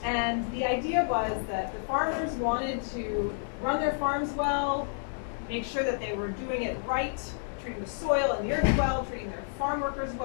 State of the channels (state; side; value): silent; right; digital silence